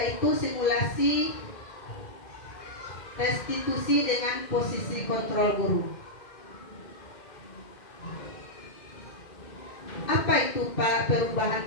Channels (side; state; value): right; late; 2.1 ms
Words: simulasi restitusi dengan posisi kontrol guru. Apa itu